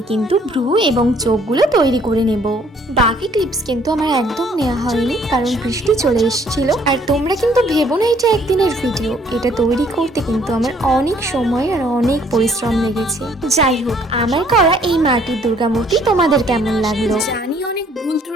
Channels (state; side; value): normal; both; correlation 0.62